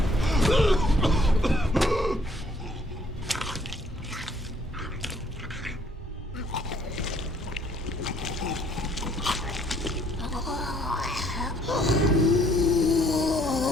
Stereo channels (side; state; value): both; normal; correlation 0.63